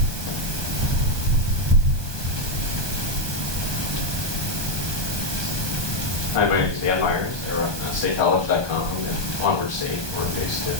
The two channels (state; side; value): late; left; 1.2 ms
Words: Hi, my name is Dan Myers. I run statecollege.com and Onward State. We're based in